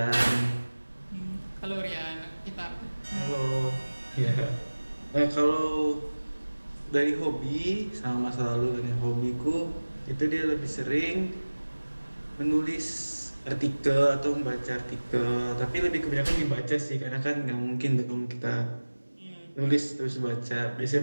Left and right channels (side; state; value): both; inverted; correlation -1.00